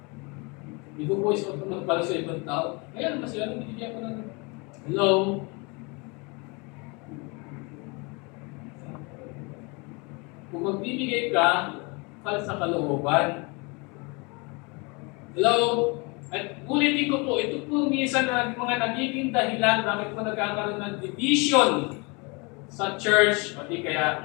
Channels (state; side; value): quieter; right; 29.5 dB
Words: hindi ko po isuot ng para sa ibang tao. Ngayon, mas yan, binibigyan ko ng hello. Kung magbibigay ka, sa kalooban. Hello? At ulitin ko po, ito po minsan na mga nagiging dahilan bakit po nagkakaroon ng division sa church o di kaya